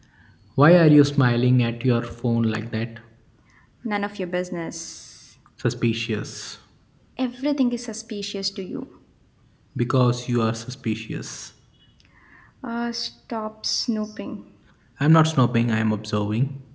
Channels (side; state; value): both; identical; correlation 1.00